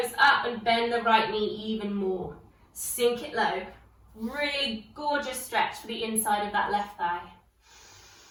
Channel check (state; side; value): identical; both; correlation 1.00